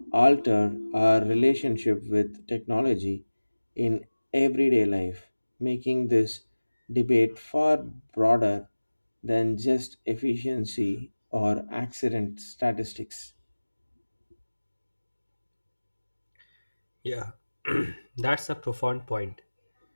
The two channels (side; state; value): both; inverted; correlation -1.00